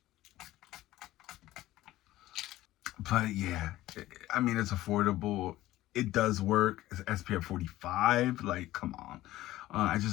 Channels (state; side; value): quieter; right; 15.9 dB